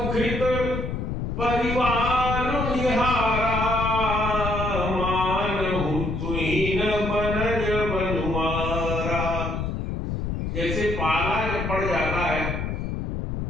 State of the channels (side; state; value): left; noise; rumble, 3 dB below the sound